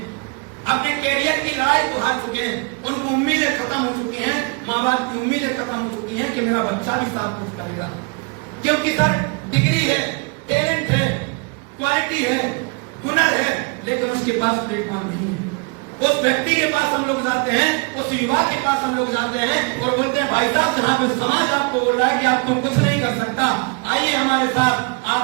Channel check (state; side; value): quieter; left; 31.9 dB